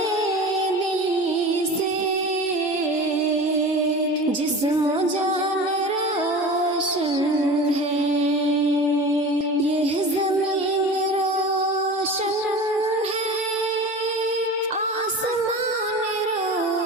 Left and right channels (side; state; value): both; normal; correlation 0.34